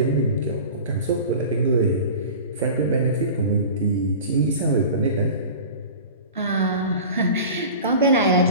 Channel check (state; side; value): inverted; both; correlation -0.37